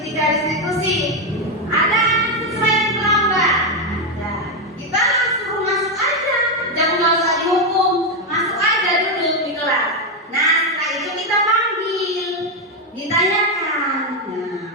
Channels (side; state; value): both; normal; correlation 0.06